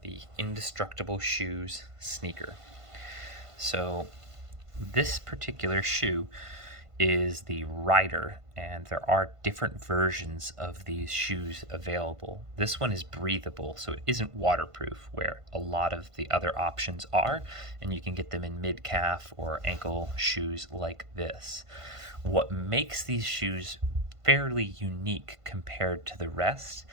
the Indestructible Shoes sneaker. So this particular shoe is the Rider, and there are different versions of these shoes available. This one is breathable, so it isn't waterproof, where a lot of the other options are, and you can get them in mid-calf or ankle shoes like this. What makes these shoes fairly unique compared to the rest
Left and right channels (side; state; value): left; late; 1.5 ms